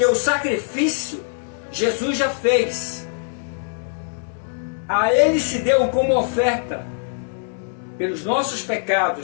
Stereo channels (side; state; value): right; silent; digital silence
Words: o sacrifício Jesus já fez. A Ele se deu como oferta pelos nossos